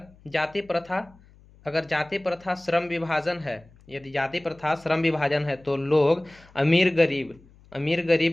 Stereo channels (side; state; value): left; noise; hum, 27 dB below the sound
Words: जाति प्रथा श्रम विभाजन है, यदि जाति प्रथा श्रम विभाजन है तो लोग अमीर